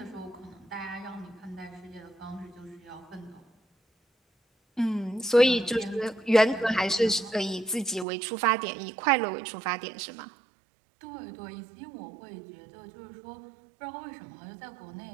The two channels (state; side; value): drops out; left; at 8.1 s